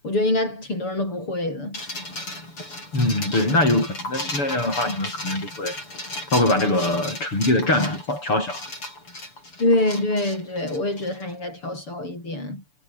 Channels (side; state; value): right; late; 6.9 ms